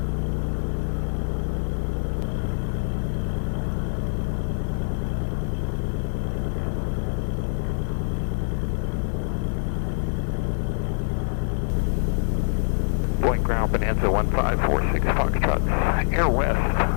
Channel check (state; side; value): silent; right; digital silence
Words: Boeing ground Bonanza 1546 Foxtrot. Air West,